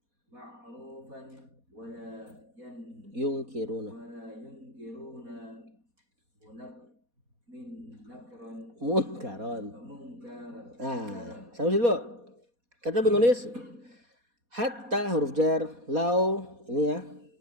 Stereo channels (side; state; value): left; late; 4.2 ms